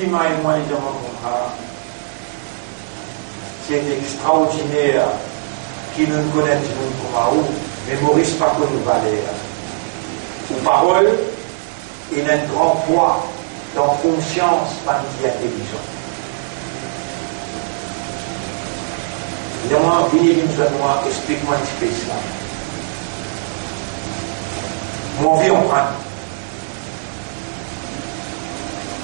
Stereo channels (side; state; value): left; silent; 58 dB below the other